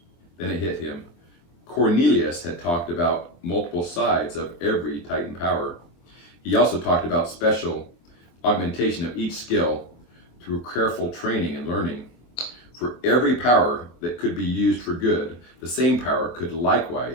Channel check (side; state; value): right; late; 24 ms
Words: Then it hit him. Cornelius had talked about multiple sides of every Titan power. He also talked about special augmentation of each skill through careful training and learning. For every power that could be used for good, the same power could